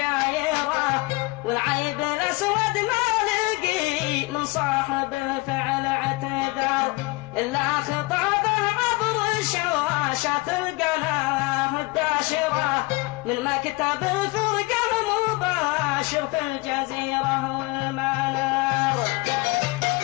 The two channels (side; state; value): right; quieter; 23.8 dB